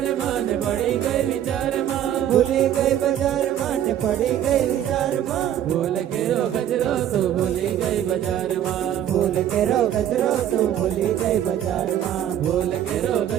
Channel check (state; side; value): quieter; left; 10.8 dB